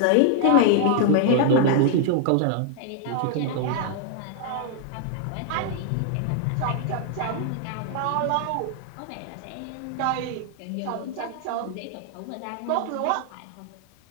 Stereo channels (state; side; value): different; both; correlation 0.00